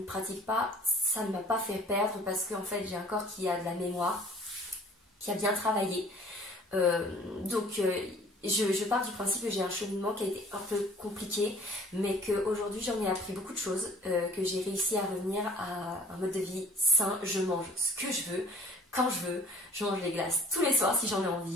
pratique pas, ça ne m'a pas fait perdre parce qu'en fait, j'ai un corps qui a de la mémoire, qui a bien travaillé. Donc, je pars du principe que j'ai un cheminement qui a été un peu compliqué, mais qu'aujourd'hui j'en ai appris beaucoup de choses, que j'ai réussi à revenir à un mode de vie sain. Je mange ce que je veux, quand je veux, je mange les glaces tous les soirs si j'en ai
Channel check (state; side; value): normal; both; correlation 0.53